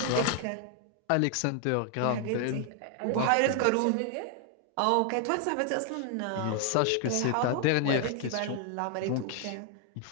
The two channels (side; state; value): both; different; correlation 0.00